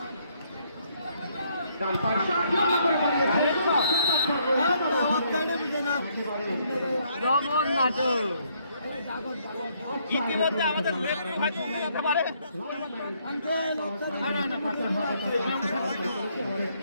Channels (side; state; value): both; inverted; correlation -0.70